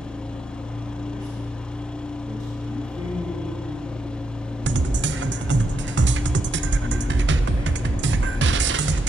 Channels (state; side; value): normal; both; correlation 0.82